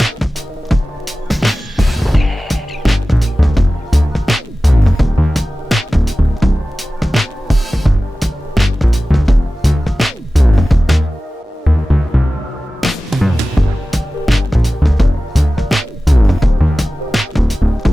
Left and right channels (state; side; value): normal; both; correlation 0.96